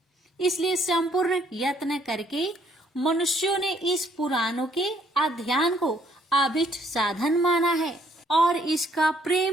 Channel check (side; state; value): both; normal; correlation 0.66